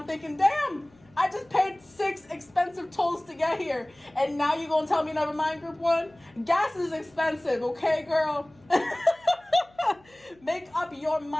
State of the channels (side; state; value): left; noise; hum, 29 dB below the sound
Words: thinking, damn, I just paid 6 expensive tolls to get here. And now you gonna tell me never mind, group one? Gas is expensive, okay, girl? Make up your